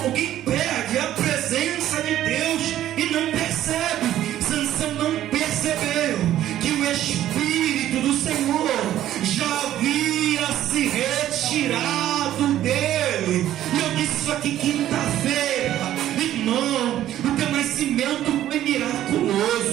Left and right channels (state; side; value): quieter; left; 12.5 dB